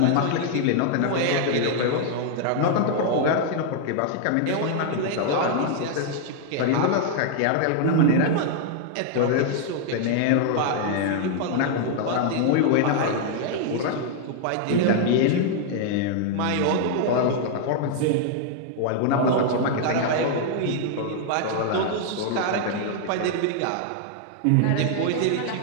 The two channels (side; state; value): both; different; correlation -0.01